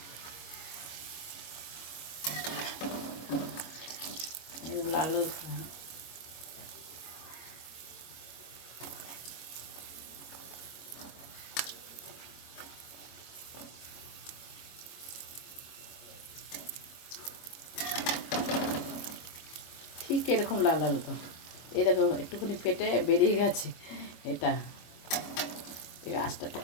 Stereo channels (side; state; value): right; late; 25 ms